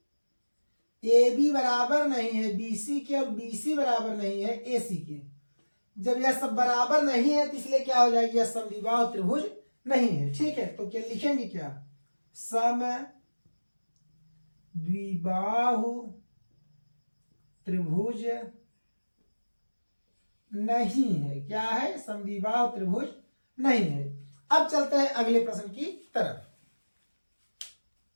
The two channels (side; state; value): both; inverted; correlation -1.00